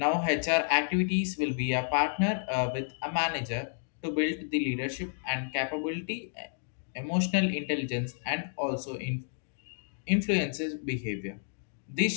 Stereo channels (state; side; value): silent; right; digital silence